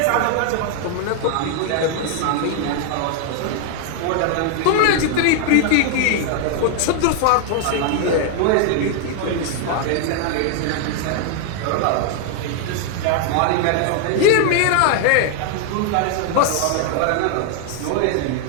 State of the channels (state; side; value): different; both; correlation 0.00